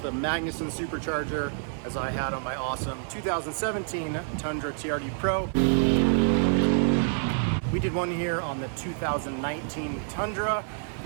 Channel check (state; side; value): silent; left; 60 dB below the other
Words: Magnuson Supercharger, as I had on my awesome 2017 Tundra TRD Pro. We did one here on the 2019 Tundra.